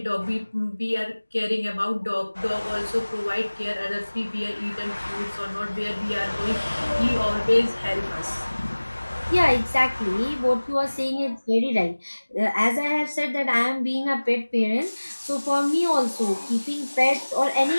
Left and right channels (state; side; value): inverted; both; correlation -1.00